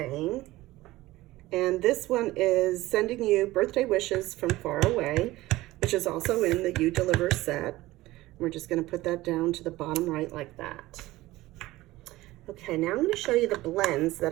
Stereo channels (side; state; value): left; quieter; 17.9 dB